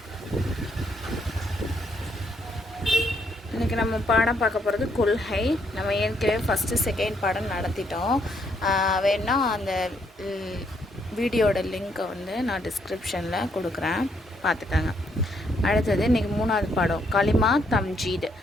இன்றைக்கி நம்ம பாடம் பார்க்க போகிறது கொள்கை. நம்ம ஏற்கனவே ஃபஸ்ட்டு செகண்ட் பாடம் நடத்திட்டோம். வேணா அந்த வீடியோட லிங்க்கை வந்து நான் டிஸ்கிரிப்ஷனில் கொடுக்குறேன், பார்த்துக்கோங்க. அடுத்தது இன்றைக்கி மூணாவது பாடம் கலிமா தம்ஜீத்.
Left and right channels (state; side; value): normal; both; correlation 0.72